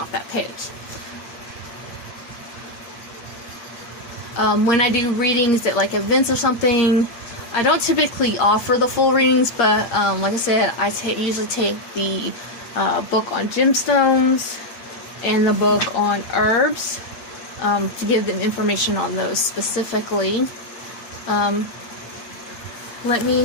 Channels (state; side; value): late; right; 8.6 ms